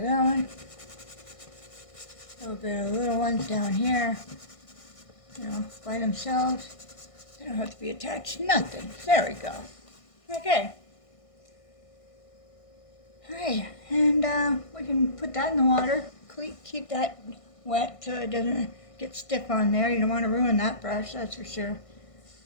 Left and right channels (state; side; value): late; right; 1.6 ms